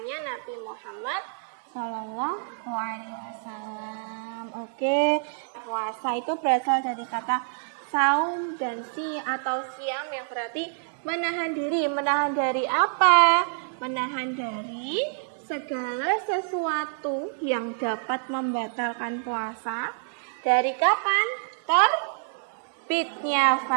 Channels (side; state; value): left; silent; digital silence